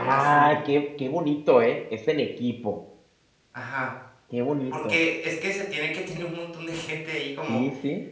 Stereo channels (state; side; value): identical; both; correlation 1.00